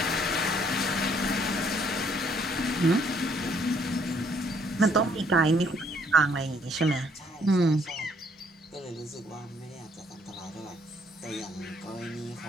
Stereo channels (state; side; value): normal; both; correlation 0.66